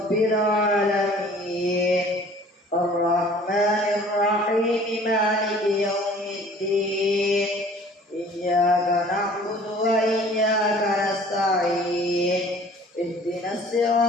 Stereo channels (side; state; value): both; normal; correlation 0.50